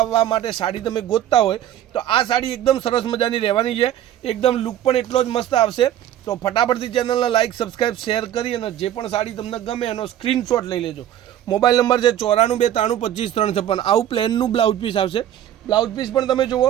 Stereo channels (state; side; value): quieter; left; 11.5 dB